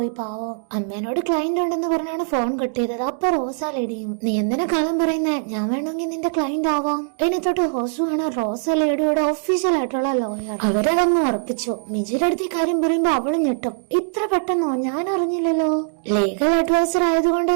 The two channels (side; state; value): left; silent; digital silence